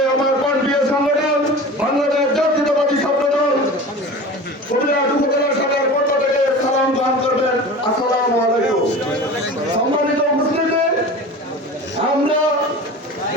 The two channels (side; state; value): both; normal; correlation 0.35